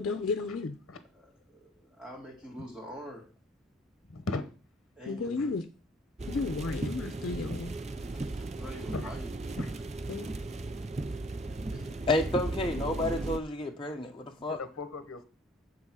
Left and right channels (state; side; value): normal; both; correlation 0.56